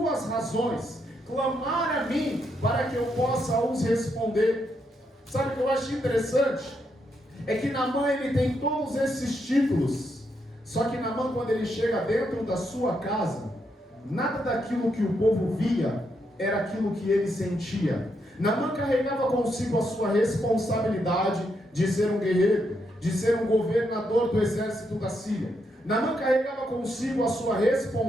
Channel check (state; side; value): normal; both; correlation 0.79